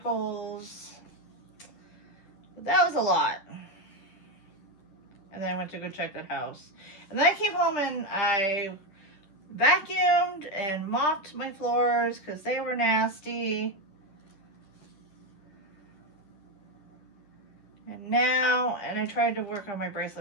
But that was a lot. And then I went to go check the house. And then I came home and I vacuumed and mopped my floors because they were nasty. And I tried to work on my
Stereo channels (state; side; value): late; right; 10 ms